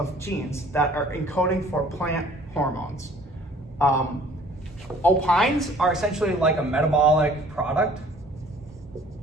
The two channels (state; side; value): normal; both; correlation 0.53